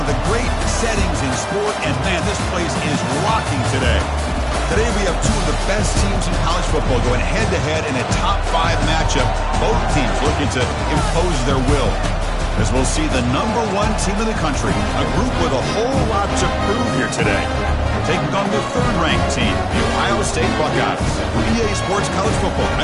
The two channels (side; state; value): both; identical; correlation 1.00